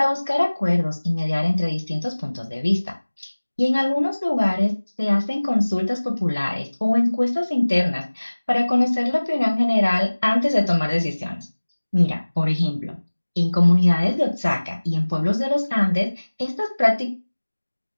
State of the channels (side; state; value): both; inverted; correlation -1.00